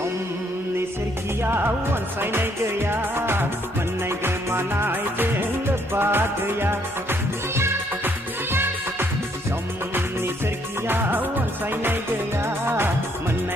सोरखियाव अनसायनाय गैया मोननाय गोमानायजों लोब्बा गैया समनि सोरखियाव अनसायनाय गैया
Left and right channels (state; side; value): normal; both; correlation 0.69